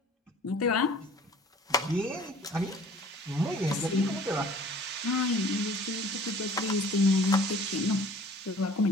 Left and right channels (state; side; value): normal; both; correlation 0.50